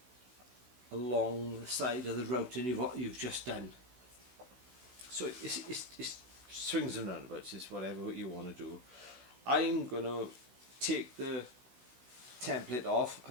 along the side of the routing you've just done. So it's swings and roundabouts, it's whatever you want to do. I'm going to take the template off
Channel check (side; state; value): left; late; 16 ms